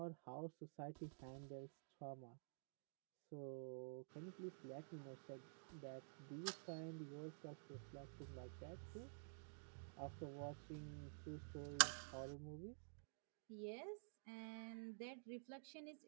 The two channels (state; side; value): silent; left; digital silence